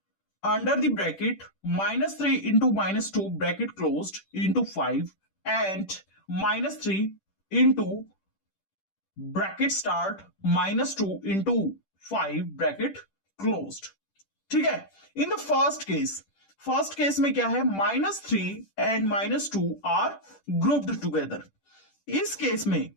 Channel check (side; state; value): right; late; 10 ms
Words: under the bracket -3 into -2 bracket closed into 5 and -3 into bracket start -2 into 5 bracket closed। ठीक है। इन द फर्स्ट केस में क्या है? -3 एंड -2 आर ग्रुप्ड टुगेदर। इस केस में